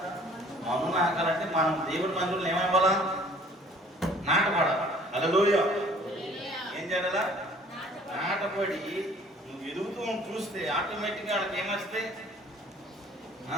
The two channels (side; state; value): both; normal; correlation 0.54